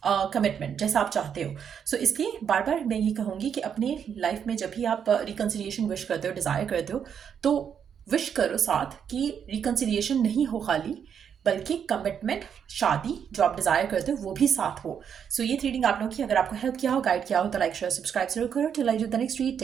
कमिटमेंट, जैसा आप चाहते हो। सो इसलिए बार बार मैं ये कहूँगी कि अपने लाइफ में जब भी आप रिकन्सिलिएशन विश करते हो, डिज़ायर करते हो, तो विश करो साथ कि रिकन्सिलिएशन नहीं हो खाली, बल्कि कमिटमेंट, शादी जो आप डिज़ायर करते हो वो भी साथ हो। सो ये रीडिंग आप लोगों की अगर आपको हेल्प किया हो, गाइड किया हो, तो लाइक शेयर सब्सक्राइब जरूर करो। Till I do the next read,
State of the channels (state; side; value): quieter; left; 7.8 dB